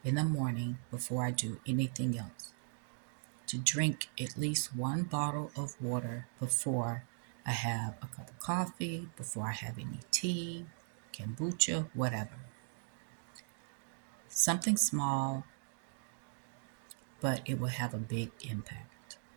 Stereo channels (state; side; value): silent; left; digital silence